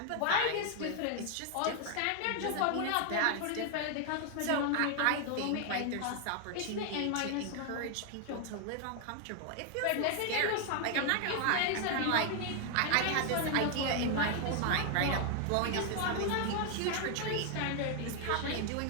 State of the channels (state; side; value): different; both; correlation 0.00